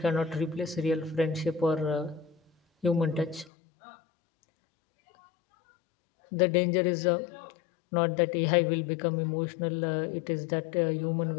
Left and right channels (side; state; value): right; drops out; at 3.5 s